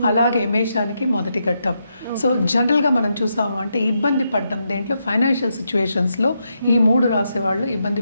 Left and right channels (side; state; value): both; inverted; correlation -0.82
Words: అలాగే మేషానికి 1వ ఘట్టం. సో జనరల్గా మనం చూసాము అంటే ఇబ్బంది పడ్డం దేంట్లో ఫైనాన్షియల్ సిచ్యువేషన్స్లో ఈ 3 రాసే వాళ్ళు